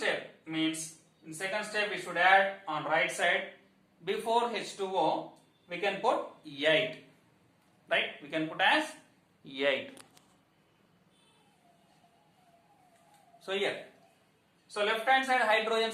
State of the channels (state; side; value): identical; both; correlation 1.00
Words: means in second step we should add on right side before H2O we can put 8. Right? We can put as 8. So here. So left hand side hydrogen